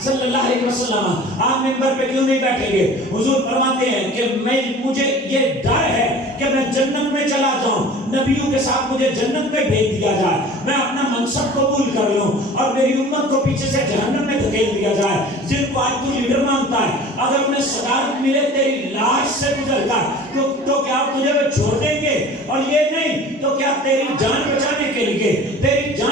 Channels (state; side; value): normal; both; correlation 0.43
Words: صلی اللہ علیہ وسلم آپ ممبر پہ کیوں نہیں بیٹھیں گے؟ حضور فرماتے ہیں کہ مجھے یہ ڈر ہے کہ میں جنت میں چلا جاؤں، نبیوں کے ساتھ مجھے جنت میں بھیج دیا جائے، میں اپنا منصب قبول کر لوں اور میری امت کو پیچھے سے جہنم میں دھکیل دیا جائے۔ جن کو آج تو لیڈر مانتا ہے، اگر انہیں صدارت ملے تیری لاش سے گزر کر تو کیا تجھے وہ چھوڑ دیں گے؟ اور یہ نہیں تو کیا تیری جان